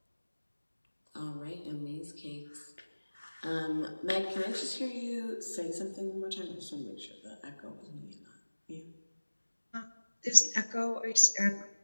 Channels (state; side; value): inverted; both; correlation -1.00